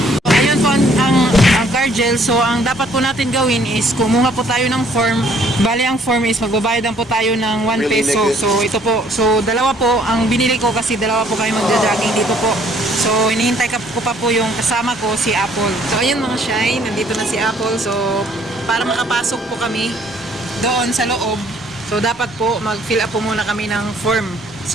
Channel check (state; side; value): normal; both; correlation 0.61